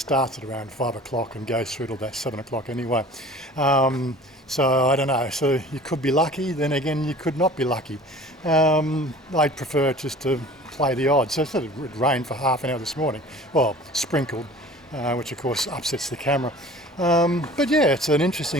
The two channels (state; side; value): normal; both; correlation 0.44